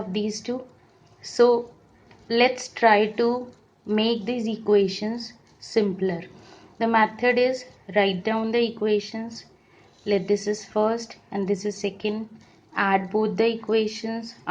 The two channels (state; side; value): identical; both; correlation 1.00